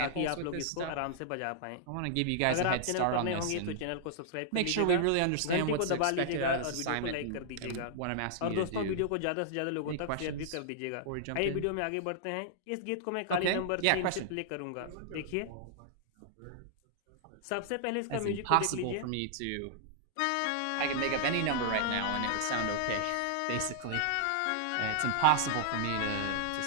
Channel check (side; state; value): both; different; correlation -0.01